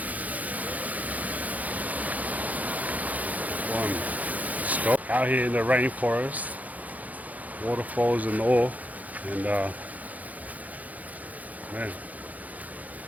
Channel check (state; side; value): late; left; 0.077 ms